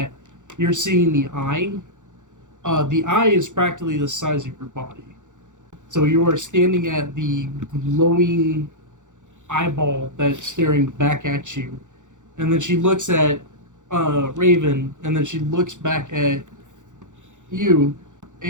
you're seeing the eye is practically the size of your body. So you are standing at the glowing eyeball that's staring back at you. And then she looks at Raven, and then she looks back at you,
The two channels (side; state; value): left; late; 0.86 ms